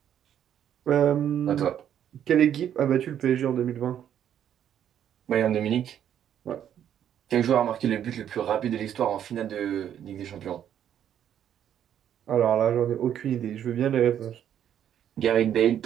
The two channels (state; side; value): quieter; left; 9.9 dB